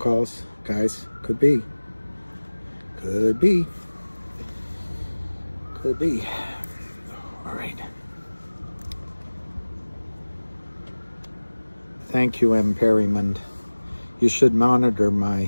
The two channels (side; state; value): both; inverted; correlation -1.00